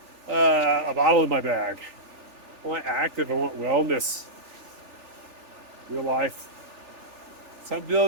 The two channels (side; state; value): left; late; 3.8 ms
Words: a bottle in my bag. I want active, I want wellness. Real life. So I'm